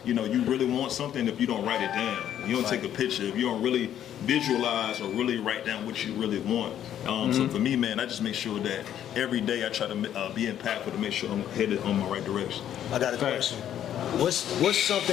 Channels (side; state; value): right; quieter; 10.6 dB